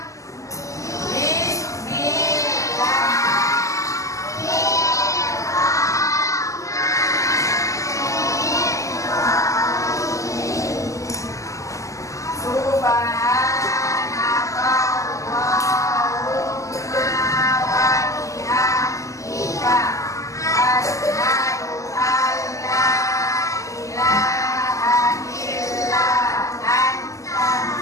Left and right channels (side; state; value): right; late; 0.16 ms